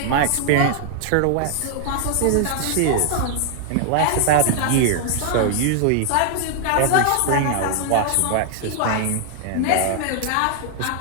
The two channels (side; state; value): both; different; correlation 0.00